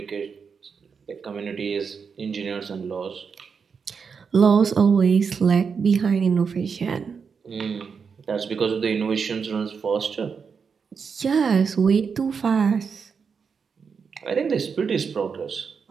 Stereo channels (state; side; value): quieter; left; 5.9 dB